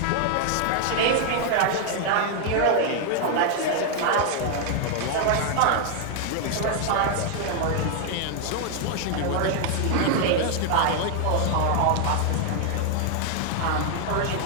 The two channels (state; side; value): different; both; correlation 0.00